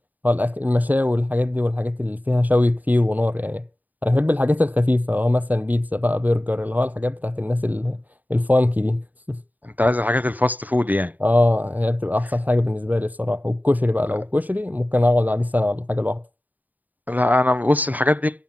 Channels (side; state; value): left; late; 0.082 ms